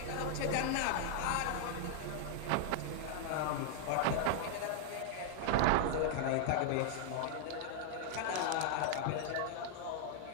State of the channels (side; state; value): both; different; correlation -0.01